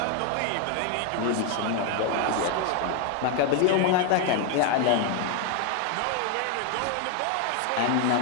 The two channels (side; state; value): both; different; correlation 0.00